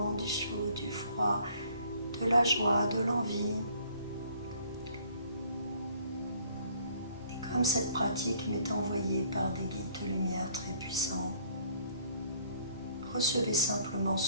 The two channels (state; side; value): inverted; both; correlation -0.59